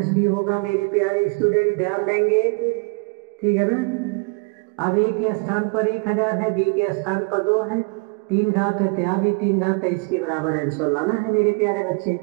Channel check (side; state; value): left; quieter; 31.3 dB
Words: बी होगा मेरे प्यारे स्टूडेंट, ध्यान देंगे। ठीक है ना। अब a के स्थान पर 1000 है, b के स्थान पर 2 है, 3 घात है तो यहाँ भी 3 घात है, इसके बराबर आंसर लाना है मेरे प्यारे बच्चे।